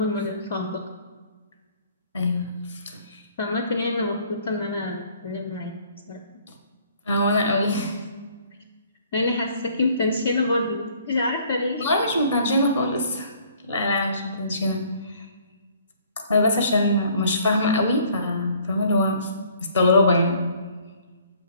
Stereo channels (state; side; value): inverted; both; correlation -0.58